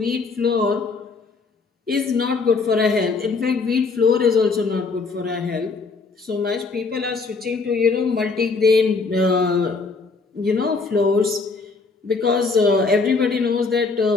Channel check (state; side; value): quieter; right; 4.3 dB